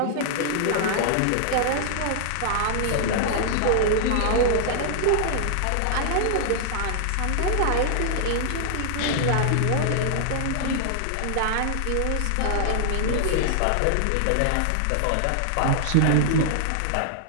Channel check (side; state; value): both; different; correlation -0.01